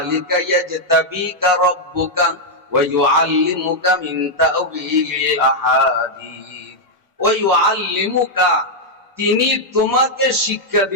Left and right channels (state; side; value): normal; both; correlation -0.03